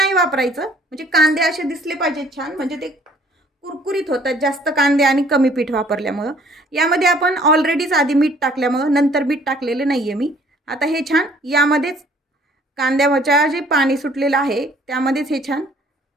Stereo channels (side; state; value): both; normal; correlation 0.58